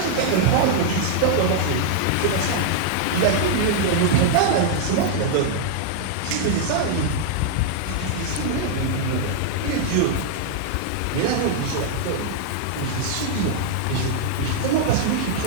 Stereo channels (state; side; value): different; both; correlation -0.01